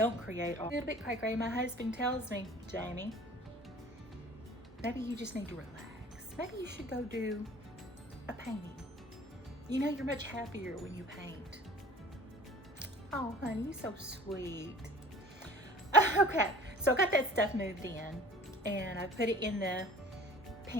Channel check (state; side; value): normal; both; correlation 0.46